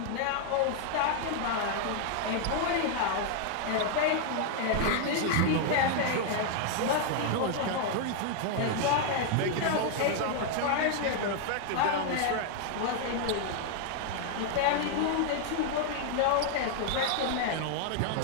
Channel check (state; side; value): different; both; correlation 0.00